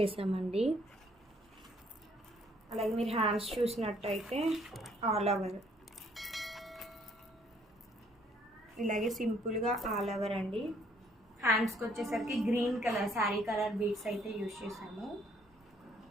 అలాగే మీరు హ్యాండ్స్ చూసినట్టయితే ఆల్ ఓవర్ ఇలాగే సింపుల్గా ఆల్ ఓవర్ అండి. హ్యాండ్స్కి వచ్చేసరికి green colour sari colour beads అయితే యూజ్ చేసాము.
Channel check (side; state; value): both; normal; correlation 0.65